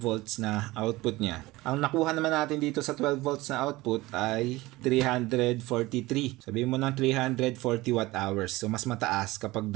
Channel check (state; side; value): quieter; left; 19.7 dB